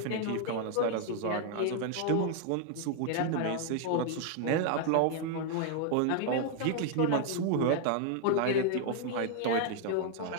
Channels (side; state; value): both; different; correlation 0.00